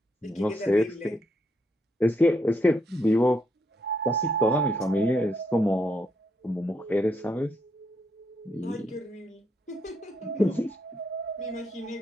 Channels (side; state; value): both; normal; correlation 0.77